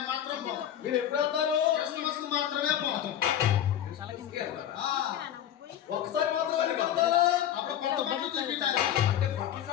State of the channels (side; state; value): right; quieter; 10.6 dB